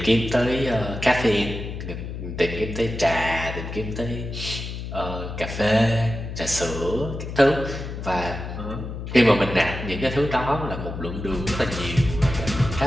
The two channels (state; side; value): noise; left; hum, 7 dB below the sound